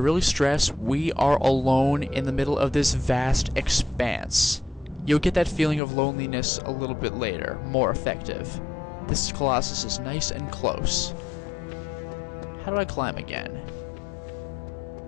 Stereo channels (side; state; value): right; drops out; at 5.8 s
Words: really stress we are alone in the middle of this vast expanse. You'll get that feeling of loneliness a little bit later, more effective. This Colossus is nice and close. How do I climb again?